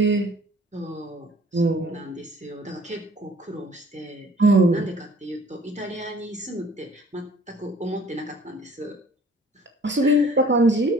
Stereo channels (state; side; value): normal; both; correlation 0.53